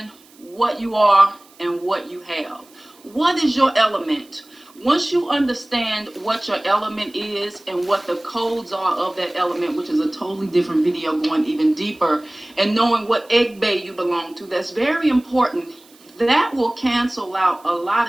what you are and what you have. What is your element? Once you understand what your element is and what the codes are of that element, which is a totally different video going even deeper, and knowing what egg bay you belong to, that's very important. That will cancel out a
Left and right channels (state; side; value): noise; right; hiss, 27 dB below the sound